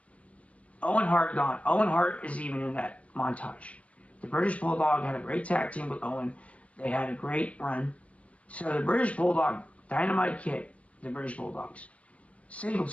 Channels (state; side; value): late; right; 0.064 ms